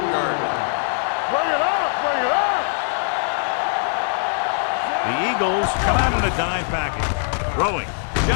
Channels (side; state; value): right; silent; digital silence